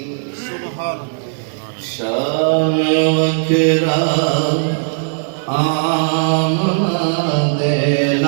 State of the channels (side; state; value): left; silent; digital silence